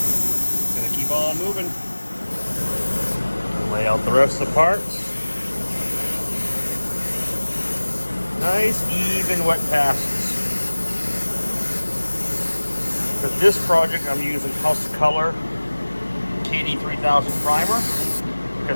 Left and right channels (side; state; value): both; inverted; correlation -1.00